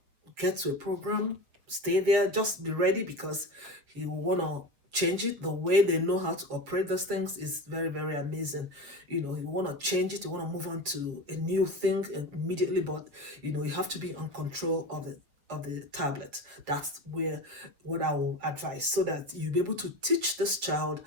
get to a program, stay there, just be ready, because he will want to change it. The way they know how to operate those things is very, very amazing. You want to change it, you want to move on to a new thing immediately, but you have to be on control of the tablet. That's where what I will advise, so that you'll be able to teach this child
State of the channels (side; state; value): left; late; 7.3 ms